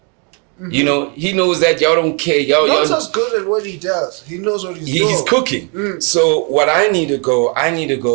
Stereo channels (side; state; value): left; quieter; 35.7 dB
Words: Mm-hmm. He knows that y'all don't care. Nota's good at what he does. He knows what he's doing. He's cooking. So what I need to go, am